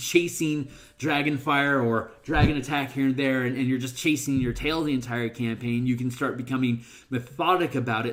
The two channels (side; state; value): both; identical; correlation 1.00